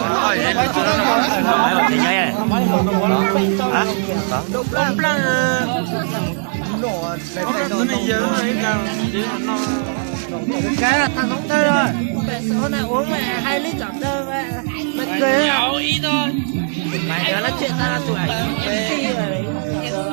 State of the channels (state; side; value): silent; left; digital silence